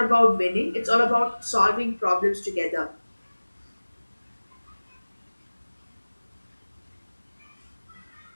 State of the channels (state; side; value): inverted; both; correlation -1.00